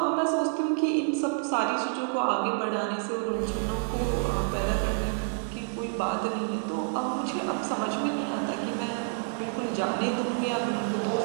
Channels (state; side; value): silent; left; digital silence